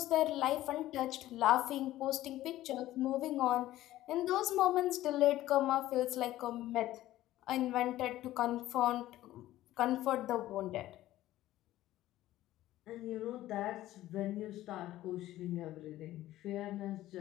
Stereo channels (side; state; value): right; quieter; 14.9 dB